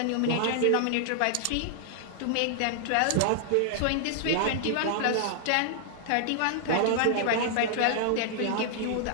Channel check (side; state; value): both; different; correlation -0.01